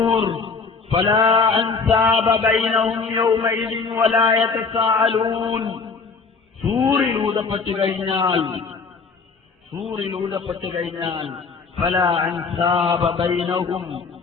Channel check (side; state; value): right; quieter; 4.7 dB